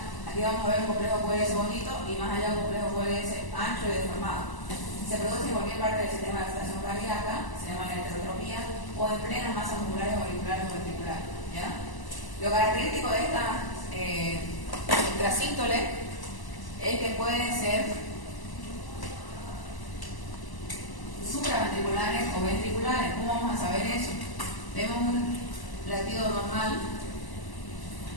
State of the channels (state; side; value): late; right; 1.0 ms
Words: Aquí vamos a ver un complejo QRS bonito y más allá un complejo QRS ancho y deformado. Se produce en cualquier parte del sistema de excitación cardíaca, se llama la heterotropía, o en plenas masas musculares auriculares o ventriculares, ¿ya? Lo característico de estas extrasístoles es que pueden ser supraventriculares o ventriculares. ¿Cómo vamos a saber eso? Vemos un latido normal,